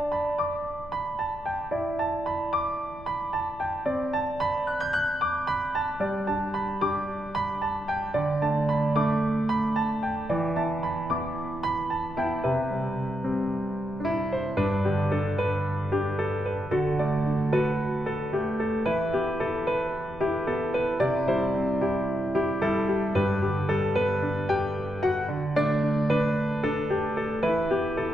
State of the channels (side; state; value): left; noise; rumble, 18 dB below the sound